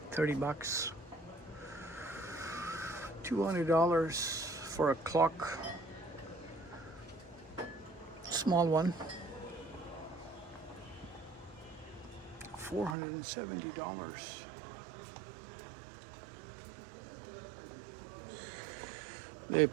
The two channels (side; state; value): left; drops out; at 13.0 s